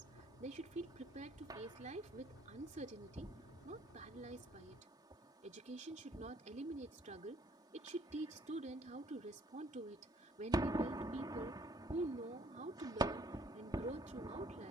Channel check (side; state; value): both; normal; correlation 0.62